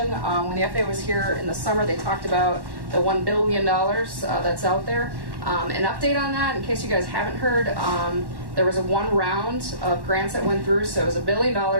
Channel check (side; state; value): left; late; 1.1 ms